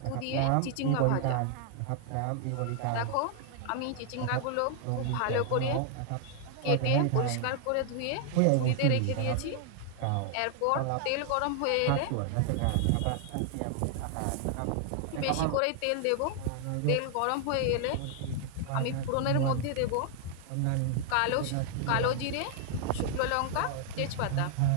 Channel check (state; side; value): different; both; correlation 0.00